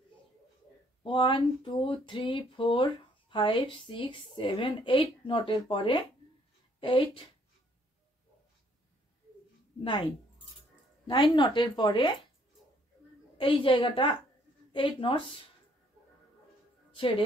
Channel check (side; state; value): both; normal; correlation 0.65